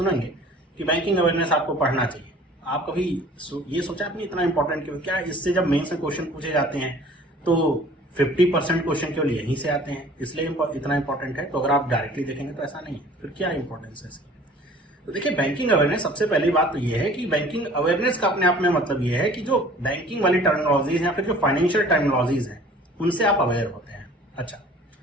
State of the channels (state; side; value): normal; both; correlation 0.49